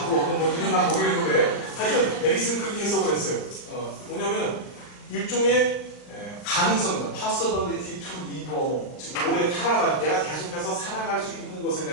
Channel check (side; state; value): right; late; 39 ms